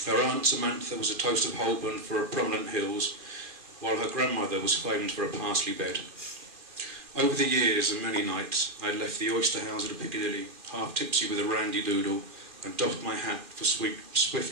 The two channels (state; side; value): late; left; 2.4 ms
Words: Her aunt Samantha was a toast of Holborn for her prominent hills, while her grandmother was famed for a parsley bed. Over the years and many nights I had left the oyster house at Piccadilly, half tipsy with a randy doodle, and doffed my hat for